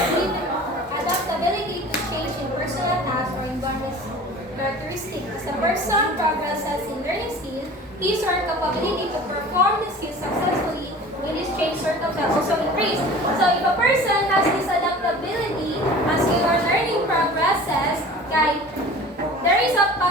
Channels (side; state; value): both; normal; correlation 0.41